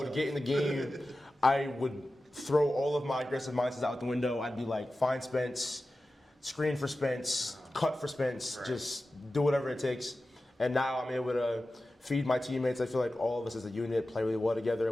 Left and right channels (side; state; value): both; normal; correlation 0.94